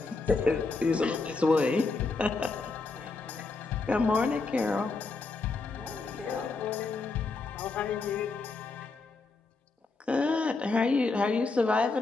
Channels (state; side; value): quieter; right; 3.9 dB